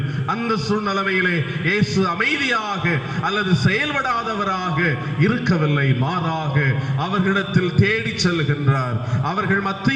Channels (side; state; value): both; identical; correlation 1.00